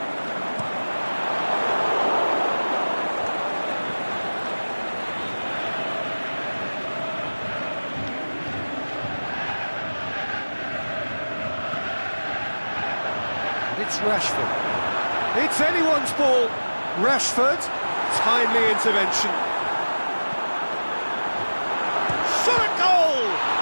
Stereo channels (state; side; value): inverted; both; correlation -1.00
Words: It's Rashford. It's anyone's ball. Rashford, timely intervention. Shot a goal!